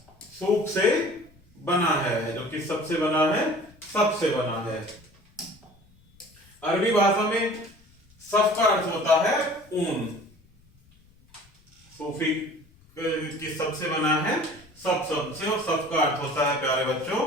सूफ से बना है, जो कि सबसे बना है, सबसे बना है। अरबी भाषा में सफ का अर्थ होता है ऊन। सूफी की सबसे बना है सब से, और सब का अर्थ होता है प्यारे बच्चों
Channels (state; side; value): noise; left; rumble, 30 dB below the sound